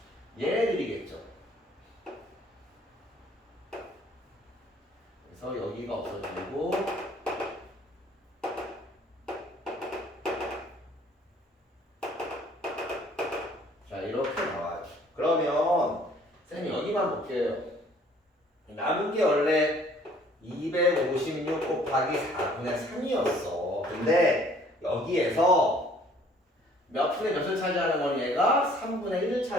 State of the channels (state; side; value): normal; both; correlation 0.58